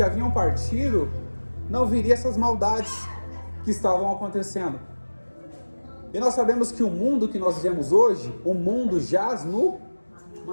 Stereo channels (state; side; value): inverted; both; correlation -1.00